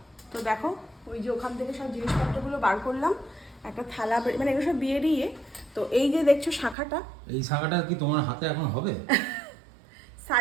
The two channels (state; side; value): drops out; left; at 6.8 s